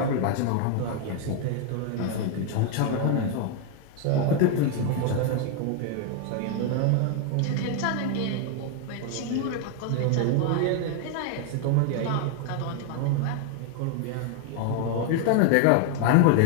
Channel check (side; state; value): both; different; correlation 0.00